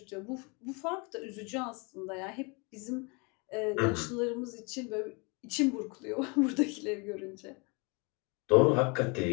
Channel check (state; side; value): quieter; right; 30.7 dB